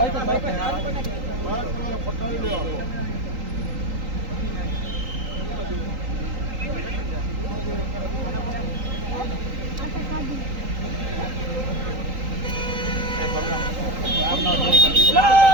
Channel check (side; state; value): left; late; 3.8 ms